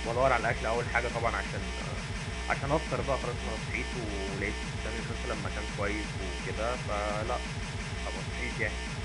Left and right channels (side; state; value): both; identical; correlation 1.00